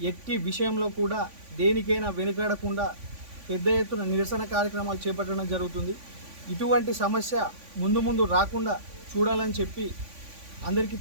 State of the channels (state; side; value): late; left; 3.5 ms